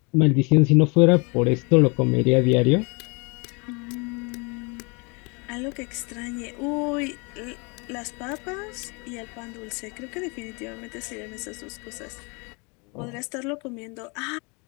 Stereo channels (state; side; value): quieter; right; 31.0 dB